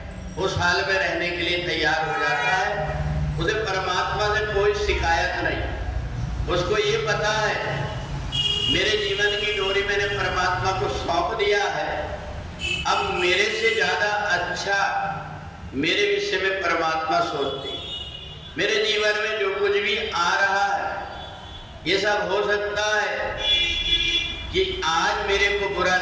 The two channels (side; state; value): both; identical; correlation 1.00